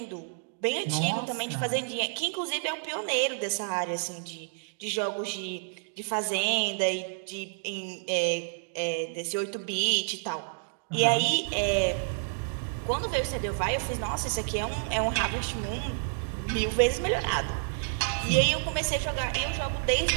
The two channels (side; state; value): left; silent; digital silence